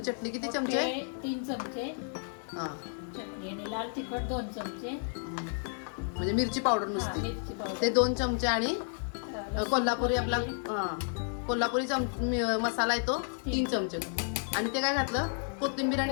किती चमचे? 3 चमचे. हा, चटणी आणि लाल तिखट 2 चमचे. म्हणजे मिरची पावडर नुसती ते 2 चमचे, आणि कोल्हापुरी आपला कोल्हापुरी मसाला आहे तो 3 चमचे. आणि ते काय घातलं? कोथिंबीर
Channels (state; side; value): silent; right; 57 dB below the other